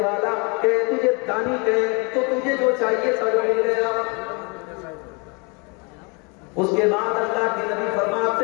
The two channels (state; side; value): quieter; right; 31.7 dB